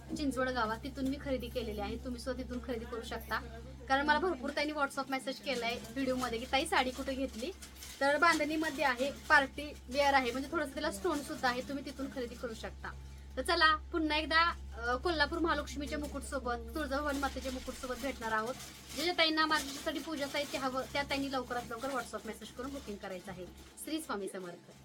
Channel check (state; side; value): identical; both; correlation 1.00